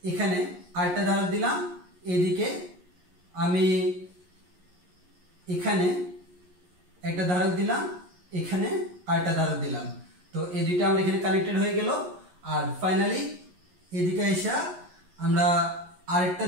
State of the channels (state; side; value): late; left; 11 ms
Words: এখানে আরেকটা ধারক দিলাম, এদিকে আমি এখানে একটা ধারক দিলাম, এখানে আরেকটা ধারক দিলাম। তো এই দুইটা আমরা এখানে কানেক্টেড হয়ে গেল। আর ফাইনালি এদিকে এসে আমরা আরেকটা